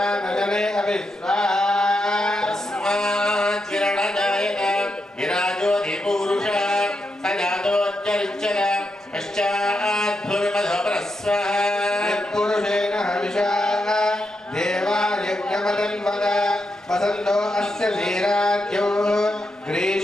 अविश्वाहा तस्मात् विरणजायत विराजोऽधिपूरुषः स जातोऽत्यरिच्यत पश्चात् भूमिमधोपरस्वः यत्पुरुषेण हविषा देवायज्ञमदन्वद वसन्तो अस्य वीराद्यो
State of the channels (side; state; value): both; normal; correlation 0.84